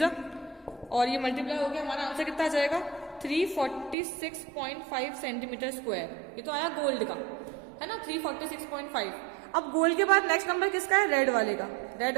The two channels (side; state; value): left; drops out; at 4.0 s